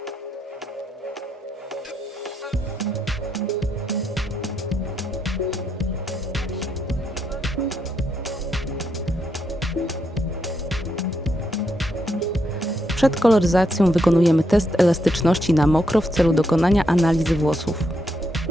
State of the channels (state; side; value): normal; both; correlation 0.79